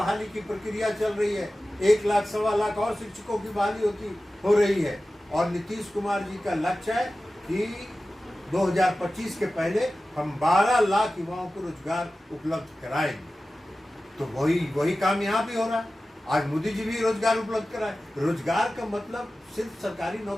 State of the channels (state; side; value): normal; both; correlation 0.95